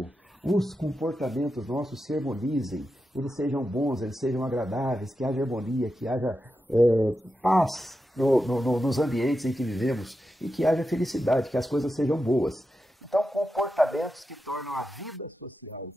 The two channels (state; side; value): normal; both; correlation 0.89